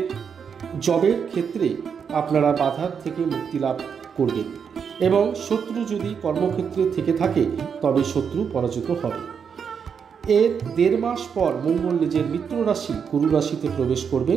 জবের ক্ষেত্রে আপনারা বাধার থেকে মুক্তি লাভ করবেন এবং শত্রু যদি কর্মক্ষেত্রে থেকে থাকে তবে শত্রু পরাজিত হবে। এর 1.5 মাস পর মঙ্গল নিজের মিত্র রাশি গুরু রাশিতে প্রবেশ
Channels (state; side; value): quieter; left; 6.8 dB